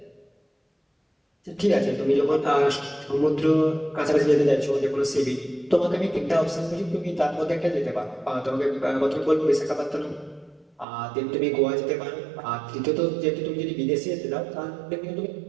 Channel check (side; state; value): left; drops out; at 10.9 s